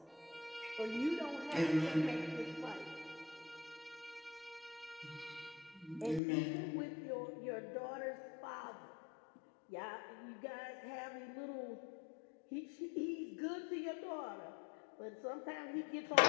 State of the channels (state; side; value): drops out; right; at 6.2 s